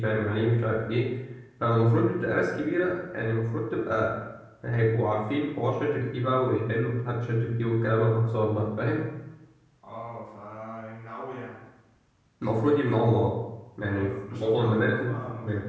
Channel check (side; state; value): both; identical; correlation 1.00